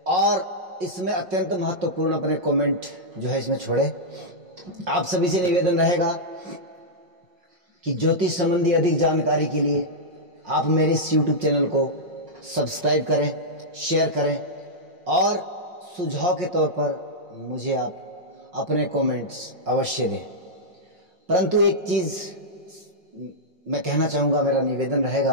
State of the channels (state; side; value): late; left; 5.5 ms